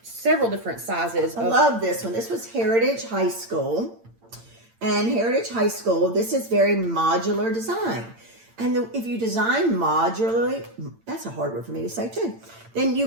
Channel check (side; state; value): left; late; 8.8 ms